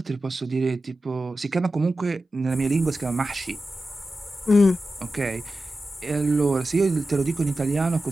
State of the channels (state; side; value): normal; both; correlation 0.93